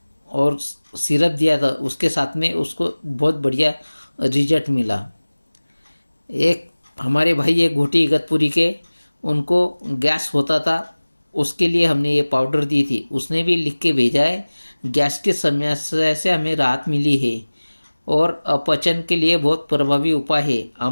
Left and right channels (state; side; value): inverted; both; correlation -1.00